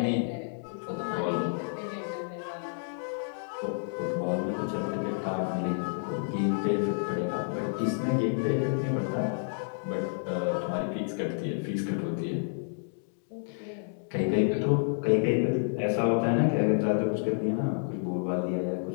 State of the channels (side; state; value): right; silent; digital silence